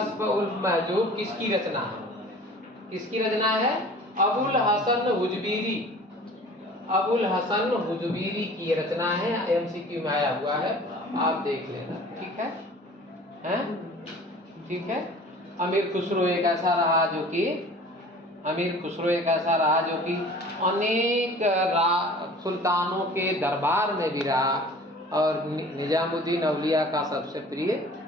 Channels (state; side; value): normal; both; correlation 0.45